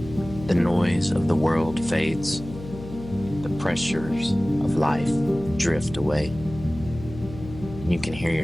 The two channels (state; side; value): noise; left; hum, 13 dB below the sound